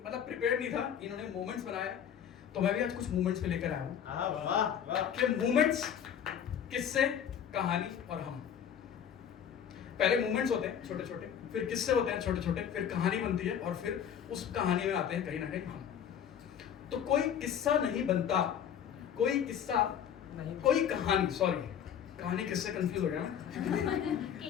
मतलब प्रिपेयर्ड नहीं था, इन्होंने मोमेंट्स बनाया तो मैं भी आज कुछ मोमेंट्स पे लेकर आया हूँ कि मोमेंट्स, किस्से, कहानी और हम। पहले मोमेंट्स होते हैं छोटे छोटे, फिर किस्से होते हैं छोटे छोटे, फिर कहानी बनती है और फिर उस कहानी में आते हैं कहीं ना कहीं हम। तो कोई किस्सा नहीं बनता, कोई किस्सा नहीं, कोई कहानी, सॉरी कहानी किससे कंफ्यूज हो गया मैं।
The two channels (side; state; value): right; quieter; 8.8 dB